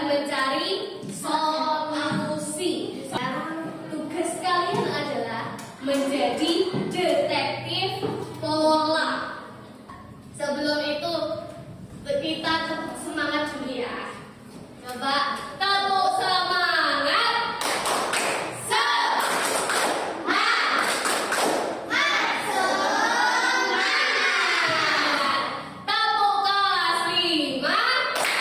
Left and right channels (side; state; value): both; identical; correlation 1.00